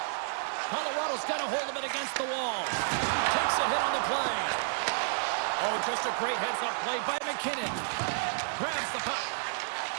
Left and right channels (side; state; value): left; silent; 57 dB below the other